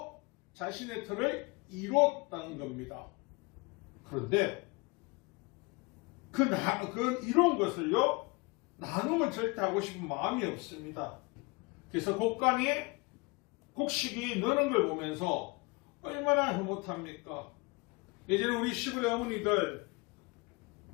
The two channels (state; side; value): quieter; right; 27.3 dB